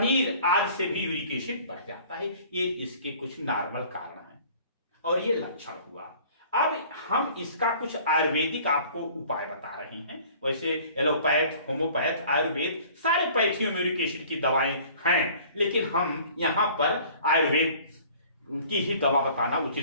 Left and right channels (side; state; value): both; inverted; correlation -0.50